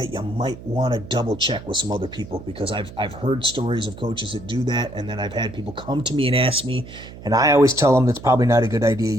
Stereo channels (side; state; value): right; noise; hum, 15 dB below the sound